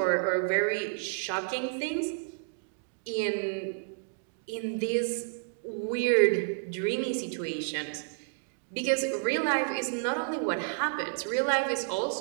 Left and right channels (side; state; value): left; silent; digital silence